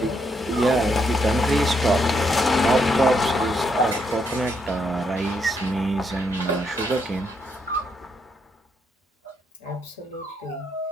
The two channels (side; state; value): both; normal; correlation 0.76